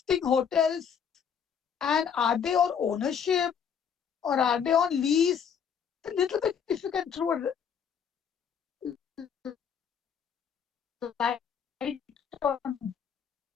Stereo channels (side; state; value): right; quieter; 7.4 dB